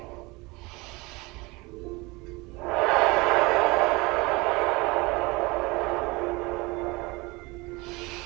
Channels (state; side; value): quieter; left; 24.4 dB